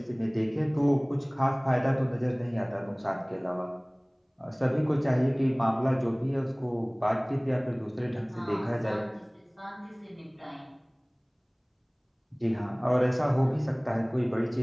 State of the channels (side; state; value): both; identical; correlation 1.00